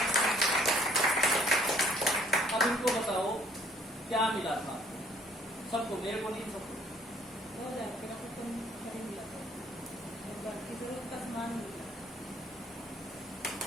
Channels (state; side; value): normal; both; correlation 0.60